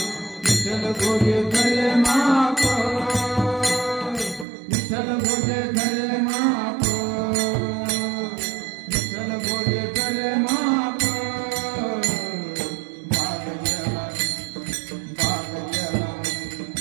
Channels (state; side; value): drops out; left; at 4.5 s